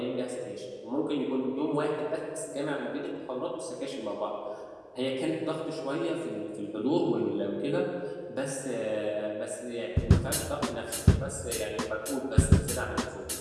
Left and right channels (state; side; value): identical; both; correlation 1.00